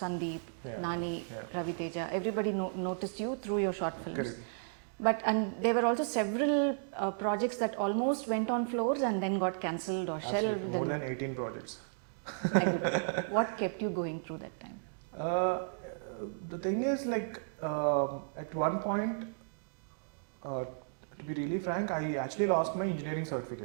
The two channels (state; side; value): silent; left; digital silence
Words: Nani, Ravi Teja, everybody noticed you through your short films. Correct. And there were also several projects that almost went on floors and then got cancelled or shelved. More than 18 projects. What kept you going through that time? The thing is, like, at one point, to be really frank, I actually lost my engineering